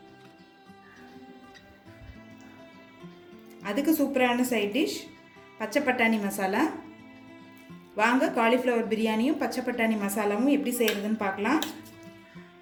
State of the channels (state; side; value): identical; both; correlation 1.00